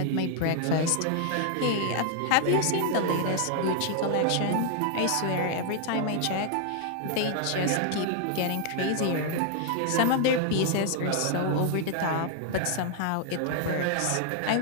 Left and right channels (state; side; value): different; both; correlation 0.00